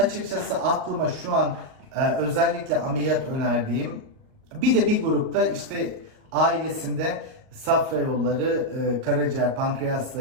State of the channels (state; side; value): late; left; 38 ms